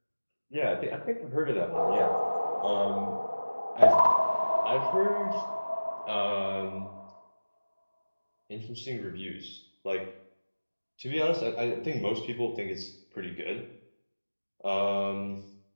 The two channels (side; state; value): both; inverted; correlation -1.00